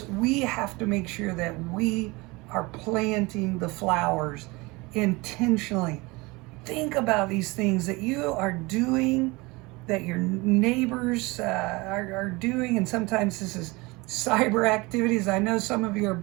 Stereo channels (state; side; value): quieter; left; 24.0 dB